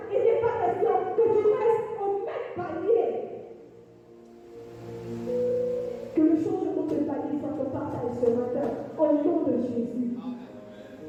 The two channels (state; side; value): identical; both; correlation 1.00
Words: il n'est pas question que tu restes au même palier. Que le changement de palier soit ton partage ce matin, au nom de Jésus.